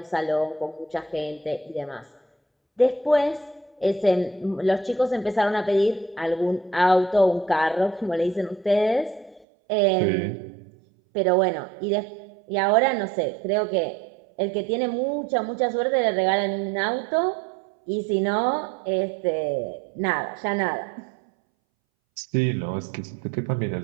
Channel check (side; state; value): left; drops out; at 9.5 s